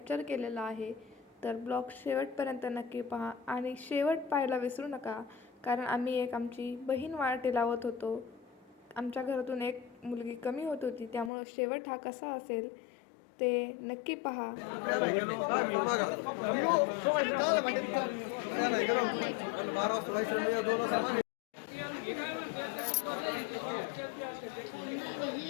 केलेला आहे. तर ब्लॉग शेवटपर्यंत नक्की पहा आणि शेवट पाहायला विसरू नका, कारण आम्ही आमची बहीण वाटे लावत होतो. आमच्या घरातून एक मुलगी कमी होत होती, त्यामुळं शेवट हा कसा असेल ते नक्की पहा.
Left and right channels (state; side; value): drops out; right; at 11.3 s